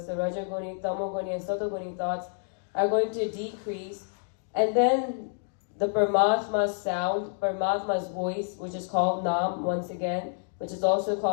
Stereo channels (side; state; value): right; silent; digital silence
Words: the Rajaguni, Tamoguni, and Satoguni thoughts, are going to decrease. And then the Paramatma's sound, Paramatma's voice, which is called Naam once again, which is also